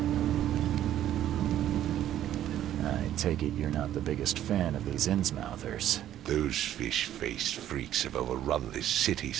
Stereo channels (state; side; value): quieter; left; 11.9 dB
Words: I take it you're not the biggest fan of these Innsmouthers. Those fish-faced freaks have overrun this city